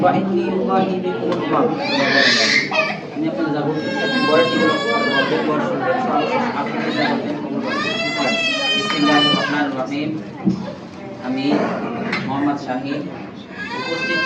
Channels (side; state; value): both; identical; correlation 1.00